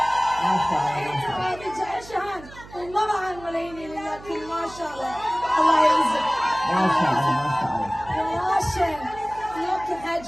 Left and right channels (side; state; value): right; noise; hum, 18 dB below the sound